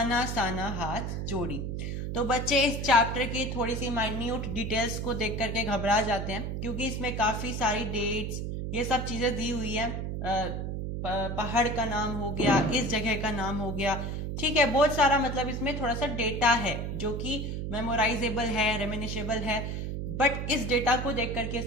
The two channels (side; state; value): right; noise; hum, 3 dB below the sound